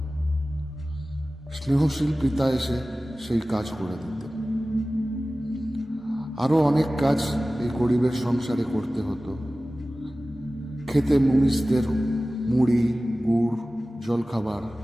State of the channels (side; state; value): both; normal; correlation 0.97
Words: স্নেহশীল পিতা এসে সেই কাজ করে দিতেন। আরো অনেক কাজ এই গরিবের সংসারে করতে হতো। খেতে মুনিশদের মুড়ি, গুড়, জলখাবার